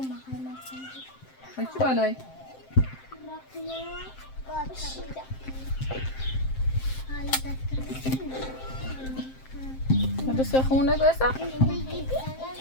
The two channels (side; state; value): right; late; 7.6 ms